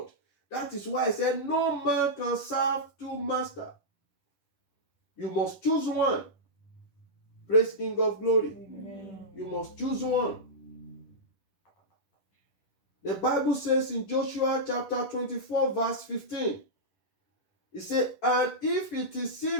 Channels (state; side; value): late; right; 10 ms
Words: That is why I said no man can serve two masters. You must choose one. Praise King of Glory. Amen. You must choose one. The Bible says in Joshua chapter 24 verse 15, it says, and if it